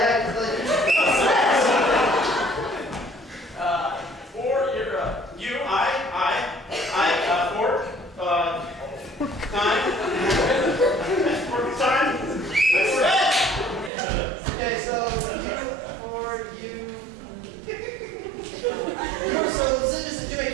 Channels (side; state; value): left; drops out; at 13.9 s